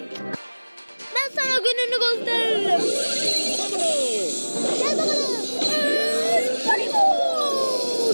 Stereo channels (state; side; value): inverted; both; correlation -1.00